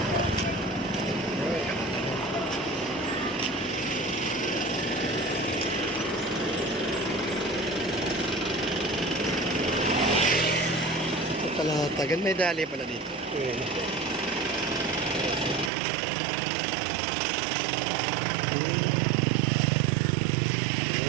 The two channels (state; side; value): drops out; left; at 15.7 s